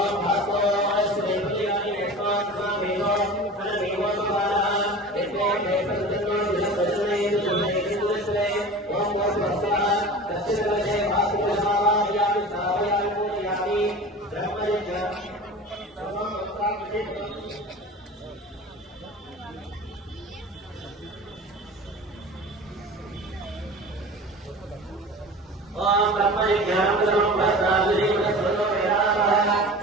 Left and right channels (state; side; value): normal; both; correlation 0.36